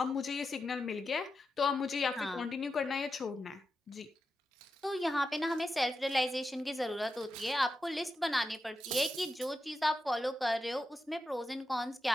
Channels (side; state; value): both; normal; correlation 0.89